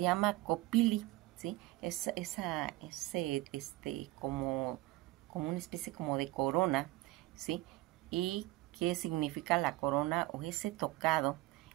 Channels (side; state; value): left; quieter; 18.5 dB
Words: llama copili, ¿sí? Es como una especie como de corona, ¿sí? ¿Y qué significa la corona o ese tocado?